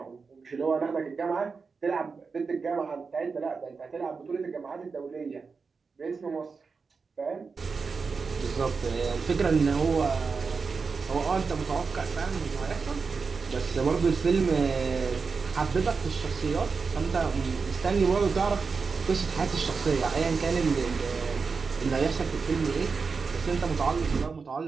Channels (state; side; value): quieter; left; 4.9 dB